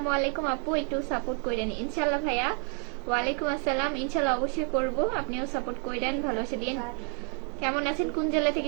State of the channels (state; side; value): quieter; left; 40.0 dB